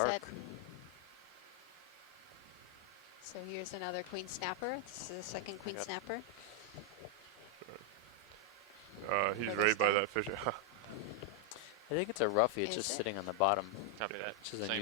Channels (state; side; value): normal; both; correlation 0.00